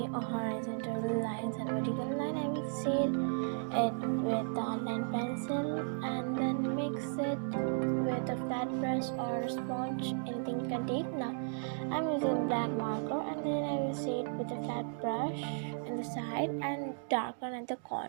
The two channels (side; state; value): left; silent; digital silence